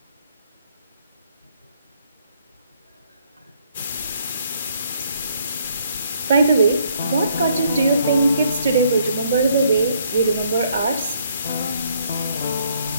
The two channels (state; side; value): inverted; both; correlation -0.68